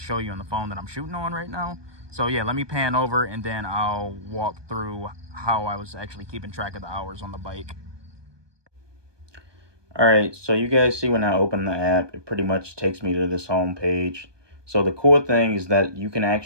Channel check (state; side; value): late; left; 1.2 ms